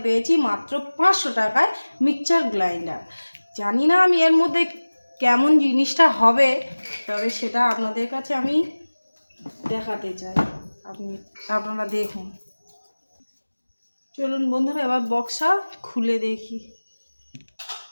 পেয়েছি মাত্র 500 টাকায় মিক্সচার গ্রাইন্ডার। জানি না আমি এর মধ্যে কেমন জিনিসটা হবে, তবে সেটা আপনাদের কাছে আমি দেখাতে চাই। আপনারা দেখুন। চলুন বন্ধুরা, এবার বক্সটা খুলে দেখি।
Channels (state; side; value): inverted; both; correlation -1.00